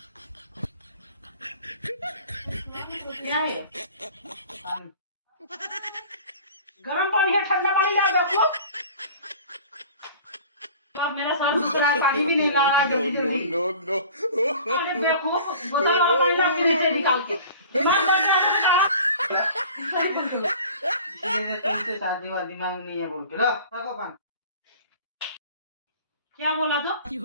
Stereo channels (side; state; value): both; inverted; correlation -0.44